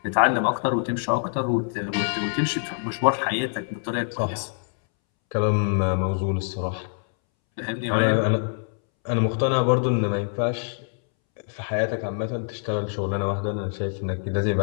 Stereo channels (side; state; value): right; silent; 62 dB below the other